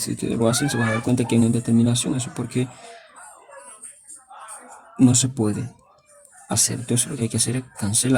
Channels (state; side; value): identical; both; correlation 1.00